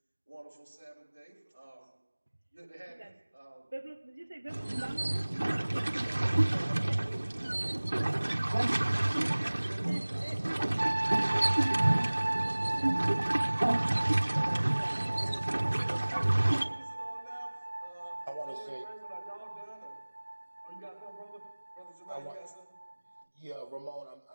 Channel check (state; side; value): inverted; both; correlation -1.00